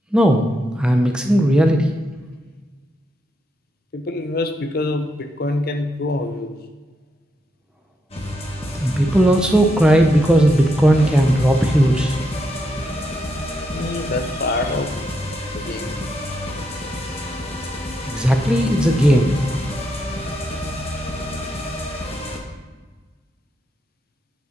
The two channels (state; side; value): normal; both; correlation 0.81